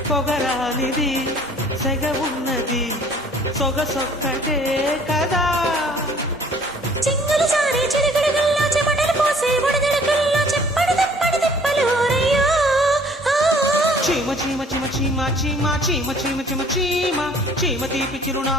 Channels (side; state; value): both; normal; correlation 0.55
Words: పొగరానిది సెగ ఉన్నది సొగసొక్కటే కదా చింగులు సారే చిరుగడుగుల్లో చెమటలు పోసే బుడగడుగుల్లో చెప్పడు తిప్పడు తిప్పలు రయ్యో చీమ చీమ చీమ చీమ చీమ చీమ చీమ చీమ చీమ చీమ తీపి